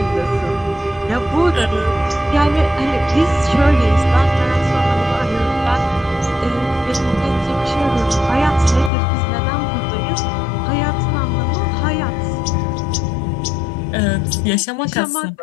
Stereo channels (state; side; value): drops out; right; at 8.9 s